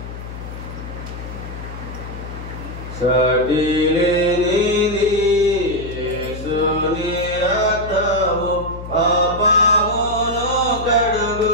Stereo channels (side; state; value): left; noise; hum, 10 dB below the sound